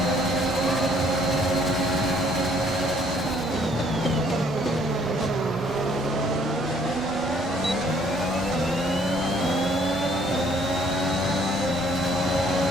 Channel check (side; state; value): both; normal; correlation 0.62